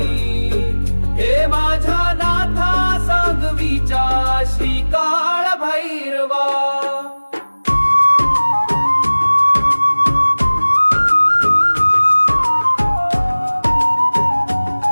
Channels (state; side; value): inverted; both; correlation -1.00